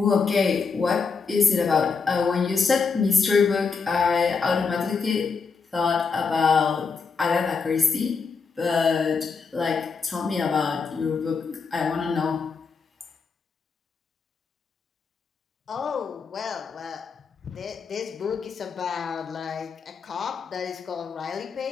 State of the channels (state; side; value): quieter; right; 5.2 dB